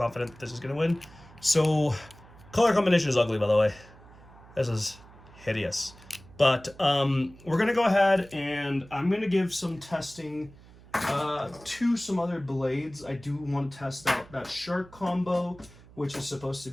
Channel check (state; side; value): noise; right; hum, 22 dB below the sound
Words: that this is going to win. So color combination is ugly, by the way. This is hideous. But we're going to go ahead and I'm going to give some testing to some other blades. I do want to test out that Shark combo, which is supposed to